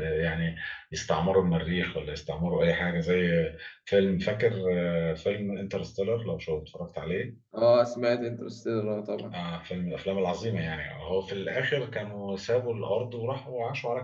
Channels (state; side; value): identical; both; correlation 1.00